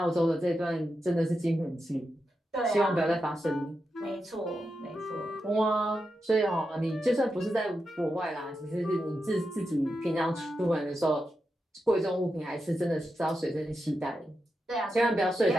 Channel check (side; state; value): both; normal; correlation 0.88